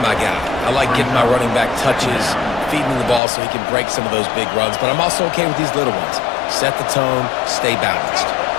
my guy. I like getting my running back touches, feeding him the ball so he can break some of those big runs. But I'm also okay with these little ones. Set the tone, stay balanced.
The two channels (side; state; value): right; drops out; at 3.2 s